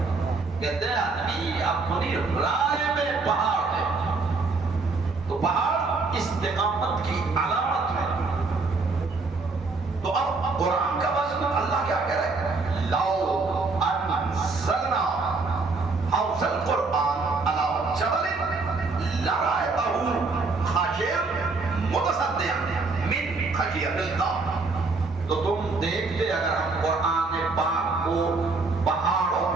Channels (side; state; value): left; quieter; 3.9 dB